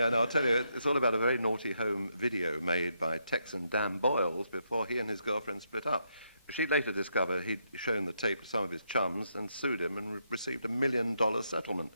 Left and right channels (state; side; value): inverted; both; correlation -0.79